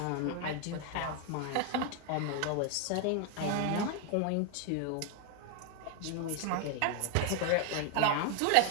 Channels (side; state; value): both; different; correlation 0.00